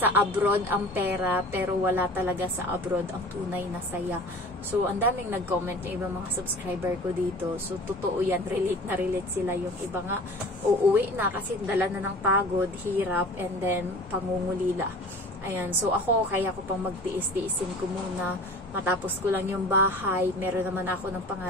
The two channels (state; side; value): normal; both; correlation 0.41